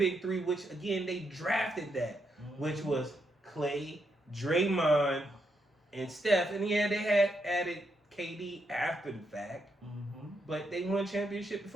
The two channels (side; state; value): both; normal; correlation 0.80